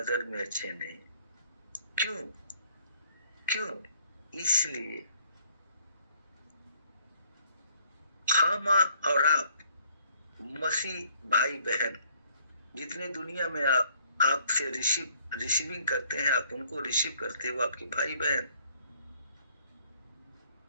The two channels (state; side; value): inverted; both; correlation -0.63